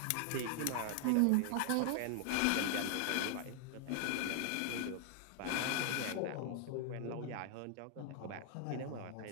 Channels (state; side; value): different; both; correlation 0.00